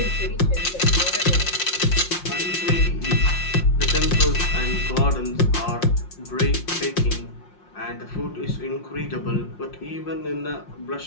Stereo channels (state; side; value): late; right; 5.6 ms